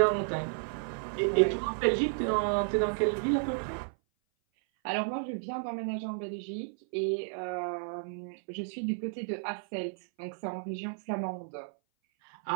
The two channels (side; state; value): left; silent; 56 dB below the other